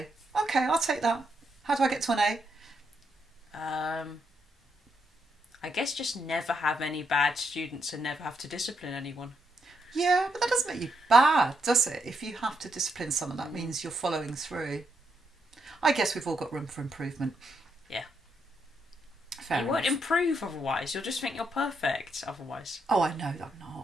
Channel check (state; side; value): normal; both; correlation 0.79